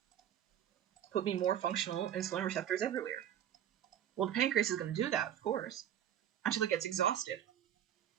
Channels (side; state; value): left; quieter; 10.3 dB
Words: Put me more functional insulin receptors everywhere. Well, the pancreas is going to do that, of course, until it gets exhausted.